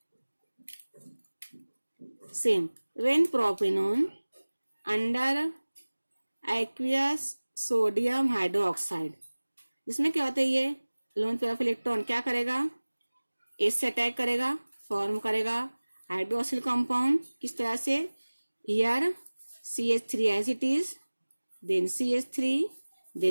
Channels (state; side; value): inverted; both; correlation -1.00